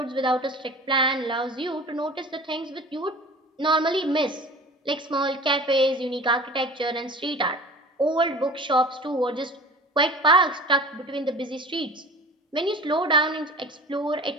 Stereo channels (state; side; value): normal; both; correlation 0.40